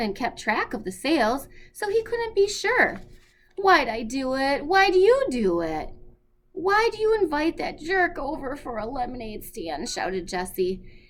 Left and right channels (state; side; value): identical; both; correlation 1.00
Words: kept track of the sales, so he couldn't be sure. "Why'd I do it? Why'd you do it? Why'd you invite that jerk over for a lemonade stand?" shouted Jessie.